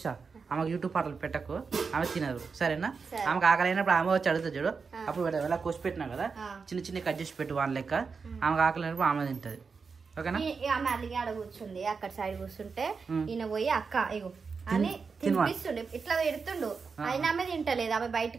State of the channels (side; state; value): left; quieter; 5.1 dB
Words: ఆమెకు యూట్యూబ్ పాటలు పెట్టకు, ఆమె తినదు సరేనా? ఆమెకు ఆకలి అయినప్పుడు ఆమె వచ్చి అడుగుతుంది చూడు, అప్పుడు ఎలా కోసి పెట్టినా కదా చిన్న చిన్న కట్ చేసి పెట్టు వాళ్ళ లెక్క. ఆమెకు ఆకలి అయినప్పుడు ఆమె తింటది. ఓకేనా? ఆమె అలిగి ఆడ కూర్చుంది, అక్కడ సైడ్ కూర్చుంటే ఈయన పోయి అక్క ఇగో అని తినిపిస్తుండే, ఇట్లా పెడుతుండు. అయినా ఆమె తింటలేదు. ఆమె